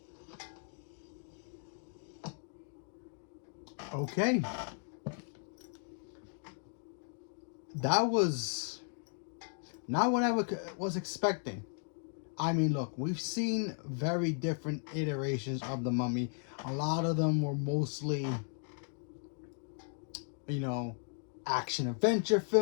Okay. That was not what I was expecting. I mean, look, we've seen very different iterations of the Mummy. A lot of them were mostly, you know, action adventure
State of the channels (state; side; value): silent; right; 54 dB below the other